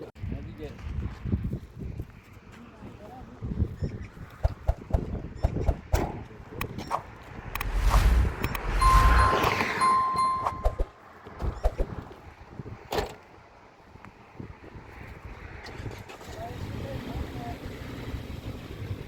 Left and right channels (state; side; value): identical; both; correlation 1.00